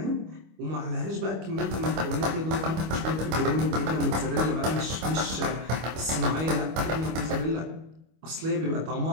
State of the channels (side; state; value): left; late; 25 ms